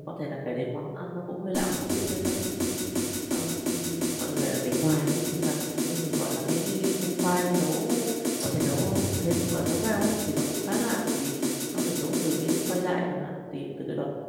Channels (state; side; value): identical; both; correlation 1.00